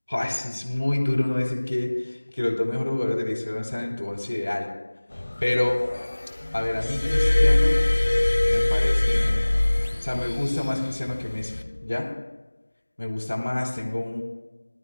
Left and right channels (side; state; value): both; inverted; correlation -1.00